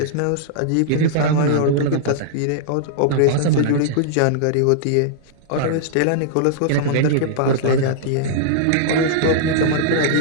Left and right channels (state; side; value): different; both; correlation -0.02